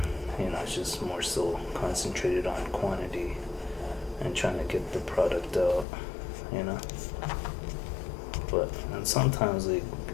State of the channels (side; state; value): right; drops out; at 5.9 s